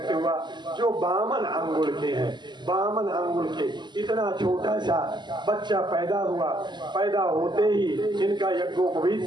हुआ जो बामन अंगुल के हैं। बामन अंगुल के इतना छोटा सा बच्चा पैदा हुआ, पैदा होते ही इनका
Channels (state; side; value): late; left; 0.21 ms